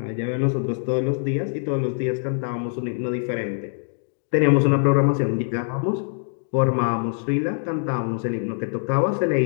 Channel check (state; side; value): silent; right; 63 dB below the other